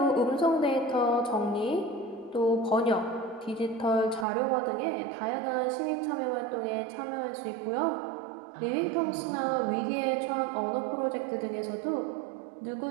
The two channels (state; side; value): drops out; left; at 4.2 s